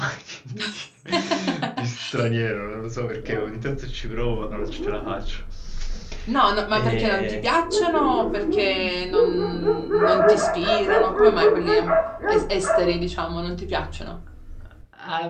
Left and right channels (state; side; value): identical; both; correlation 1.00